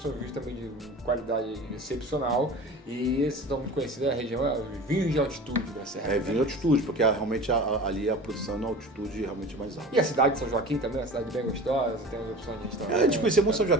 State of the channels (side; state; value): both; normal; correlation 0.37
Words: vinhos também de qualidade excepcional, e esses estão muito conhecidos, a região é os vinhos de altitude da Serra. Vinho de altitude, porque realmente ali a produção na altitude realmente é mais alta. E a cidade de São Joaquim também é uma cidade bem gostosa, tem as opções de restaurante. A gente conhecia muito São